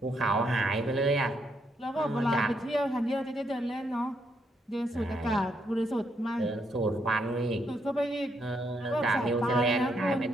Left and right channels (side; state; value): both; normal; correlation 0.76